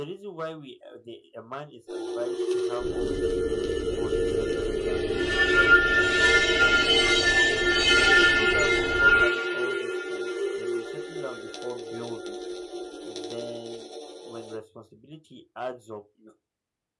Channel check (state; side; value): identical; both; correlation 1.00